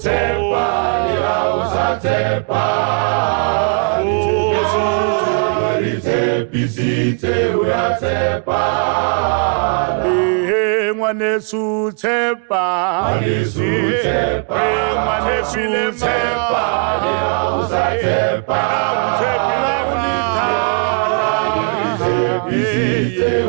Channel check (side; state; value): left; quieter; 39.1 dB